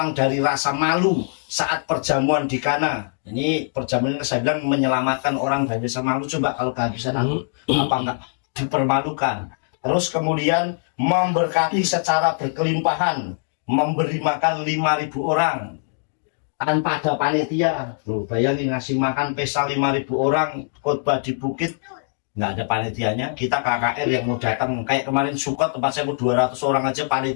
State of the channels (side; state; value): right; silent; digital silence